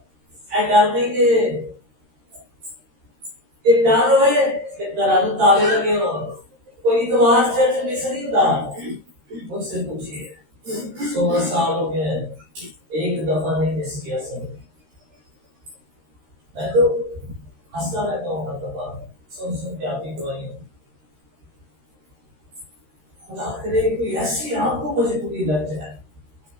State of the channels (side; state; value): left; late; 13 ms